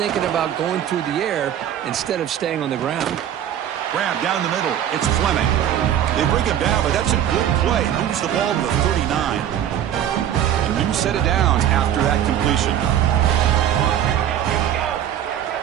about going through the air instead of staying on the ground. Grab down the middle. It's Fleming. They bring him down, but that's a good play. Moves the ball to the 39. A new set of downs after that completion.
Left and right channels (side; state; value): left; quieter; 10.5 dB